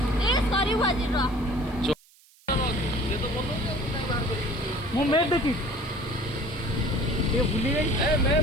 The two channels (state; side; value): noise; right; hiss, 28 dB below the sound